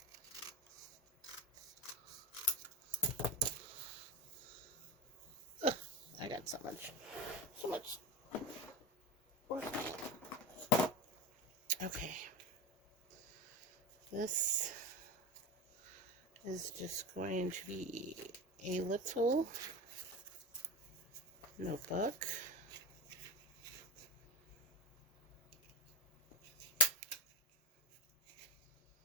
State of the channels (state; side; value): normal; both; correlation 0.21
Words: want so much where's okay. This is just going to be a little notebook.